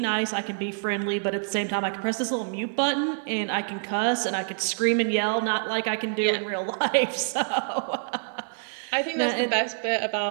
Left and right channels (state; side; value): silent; left; digital silence